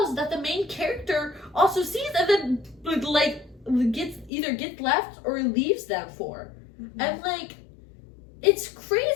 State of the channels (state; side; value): drops out; right; at 4.3 s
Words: that the main character also sees, and then like gets left or leaves them for. Mhm. And like, it's